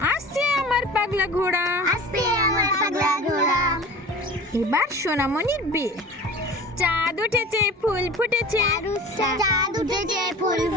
আসছে আমার পাগলা ঘোড়া। আসছে আমার পাগলা ঘোড়া। এবার সোনামণির বে। চাঁদ উঠেছে, ফুল ফুটেছে, চাঁদ উঠেছে, ফুল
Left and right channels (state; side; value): normal; both; correlation 0.38